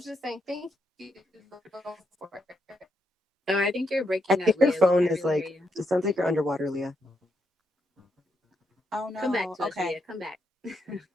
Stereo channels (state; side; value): normal; both; correlation 0.80